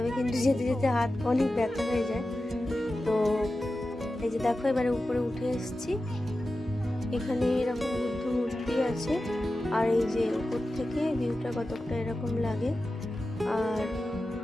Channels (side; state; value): both; normal; correlation 0.93